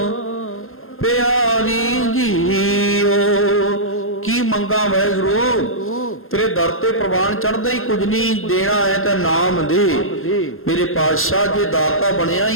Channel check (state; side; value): late; right; 0.61 ms